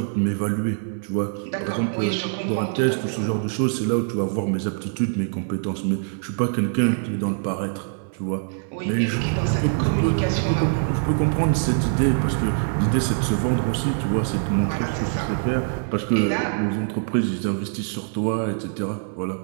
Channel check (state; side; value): silent; left; 63 dB below the other